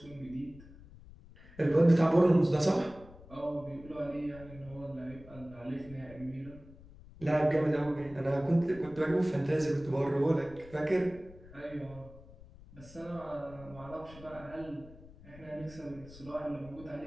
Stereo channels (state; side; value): noise; left; rumble, 20 dB below the sound